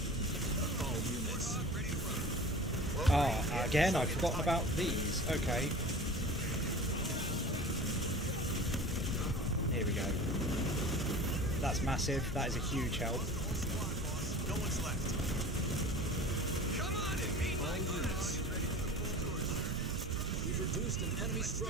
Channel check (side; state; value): both; normal; correlation 0.37